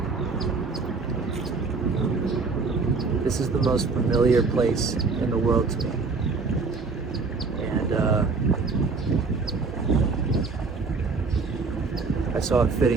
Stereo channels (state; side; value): quieter; left; 4.3 dB